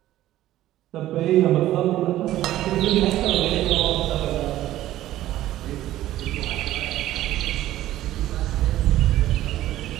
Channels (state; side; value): quieter; left; 14.2 dB